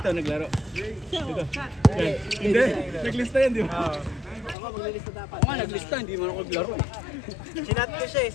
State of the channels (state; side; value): drops out; right; at 4.5 s